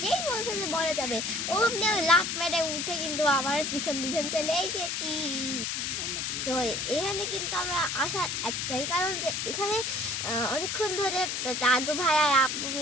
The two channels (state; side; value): noise; left; hiss, 2 dB below the sound